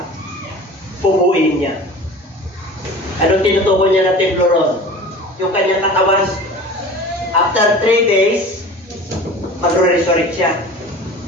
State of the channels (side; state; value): both; normal; correlation 0.39